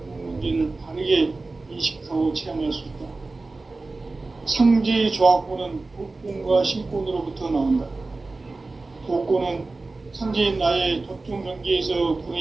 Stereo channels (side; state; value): left; quieter; 3.5 dB